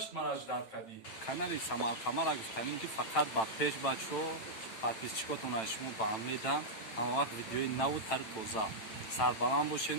мара ждат кади. канали Самар Қамар гуфтанем ки фақат ба пеш бачо подписчикотона шумо ба ҳам медам ҳама вақт видеои наву тари тоза сарбаланд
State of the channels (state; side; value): late; right; 9.0 ms